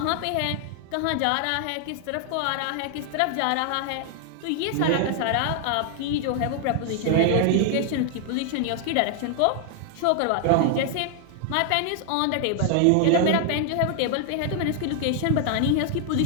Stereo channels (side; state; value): both; different; correlation 0.00